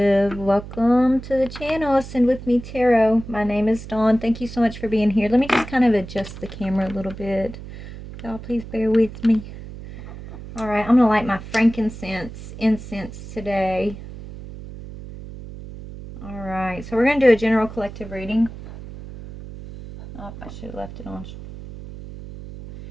Welcome to the channel, Ascend With Me Tarot. My name is Dawn. Thank you so much for being here. Let me just kind of adjust the camera a little bit. Y'all, please bear with me. All right, I'm going to light my frankincense incense today. All right, so we're going to do a general collective reading. Oh, I should have left it on.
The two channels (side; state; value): right; noise; hum, 13 dB below the sound